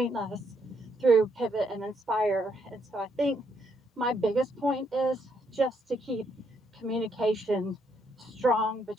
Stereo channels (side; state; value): both; normal; correlation 0.74